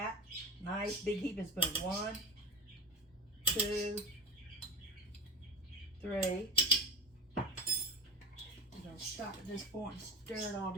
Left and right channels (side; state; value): both; normal; correlation 0.26